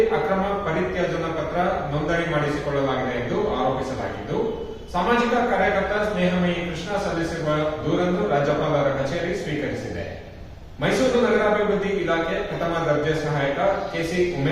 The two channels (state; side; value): identical; both; correlation 1.00